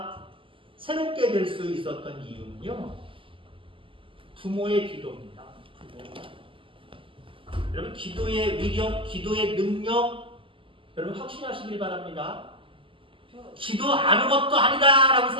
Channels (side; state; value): left; late; 0.25 ms